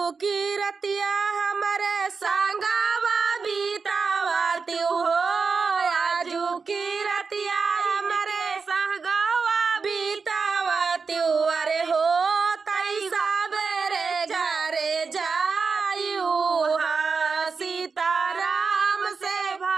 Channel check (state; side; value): quieter; left; 5.0 dB